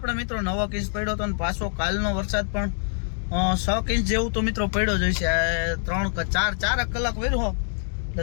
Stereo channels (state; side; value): silent; right; digital silence